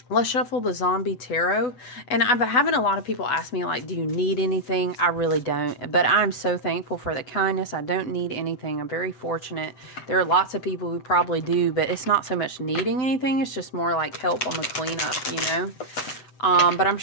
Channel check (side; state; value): right; late; 7.9 ms